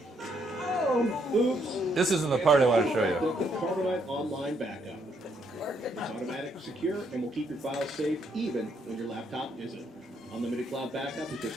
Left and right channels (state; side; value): normal; both; correlation 0.73